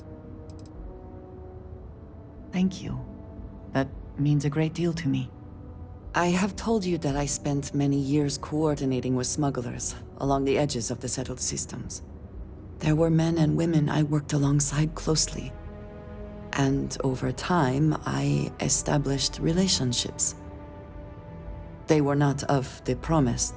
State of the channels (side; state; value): both; identical; correlation 1.00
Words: Thank you. That means a great deal to me. I have told you that I spent many years coordinating with smugglers along the edges of the settled systems. There were men and women I worked alongside closely. And over time, I established relationships. They were not of the